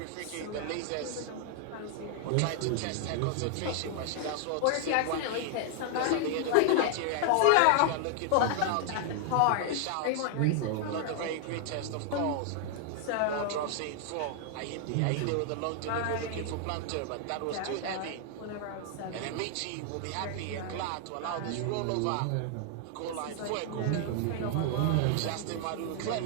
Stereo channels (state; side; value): different; both; correlation 0.00